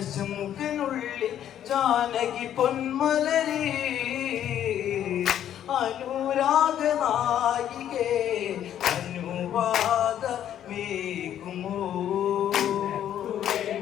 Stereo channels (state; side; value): quieter; right; 10.6 dB